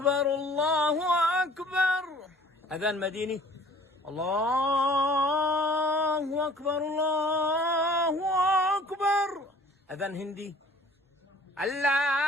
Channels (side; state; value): both; normal; correlation 0.51